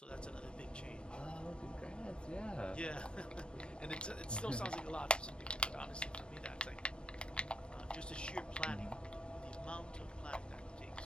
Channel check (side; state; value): right; late; 0.056 ms